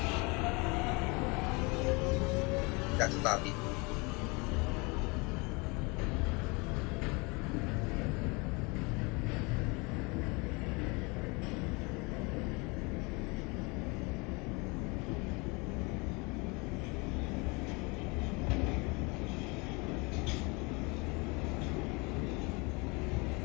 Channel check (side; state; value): right; quieter; 28.1 dB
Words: That's a copy.